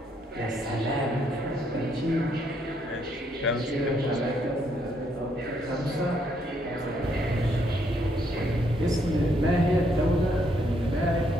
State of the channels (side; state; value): both; normal; correlation 0.72